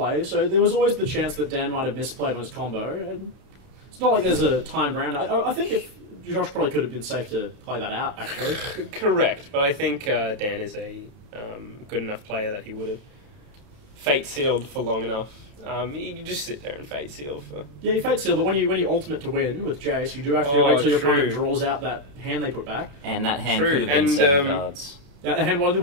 so there was always the chance that Dan might have misplayed on his combo. And it's not like there's a timed round. I think if Josh probably could have been safe to play that out, actually. Correct, but I think Dan is a good enough player that he would have fate sealed for long enough. You can just sit there and fate seal for... Yeah, you fate seal, but when you ultimate to win with Jace, you do have to wait till your opponent draws out that hand they put back. And that hand could have been 7 cards. That hand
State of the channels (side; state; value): left; late; 32 ms